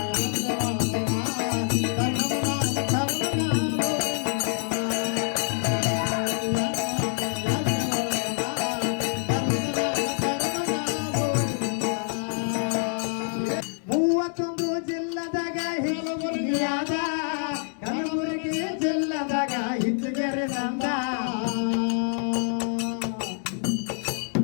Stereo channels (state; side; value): silent; right; 61 dB below the other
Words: ಕಲಬುರಗಿ ಜಿಲ್ಲದಾಗ ಹಿಂಚಗೇರಿ ನಂದ